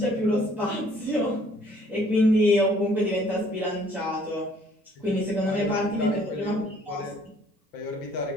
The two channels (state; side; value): normal; both; correlation 0.60